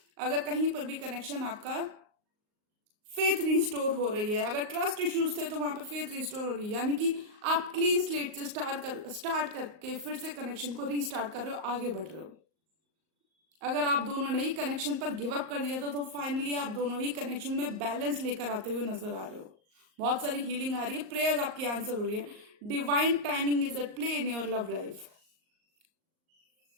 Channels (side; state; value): left; late; 38 ms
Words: अगर कहीं पर भी कनेक्शन आपका फेथ रिस्टोर हो रही है, अगर ट्रस्ट इश्यूज थे तो वहां पे फेथ रिस्टोर हो रही है, यानी कि आप क्लीन स्लेट से स्टार्ट करके फिर से कनेक्शन को रीस्टार्ट कर रहे हो, आगे बढ़ रहे हो। अगर आप दोनों ने ही कनेक्शन पर गिव अप कर दिया था, तो फाइनली आप दोनों ही कनेक्शन में बैलेंस लेकर आते हुए नजर आ रहे हो। बहुत सारी हीलिंग आ रही है, प्रेयर्स आपकी आंसर हो रही है। Divine timing is at play in your love life.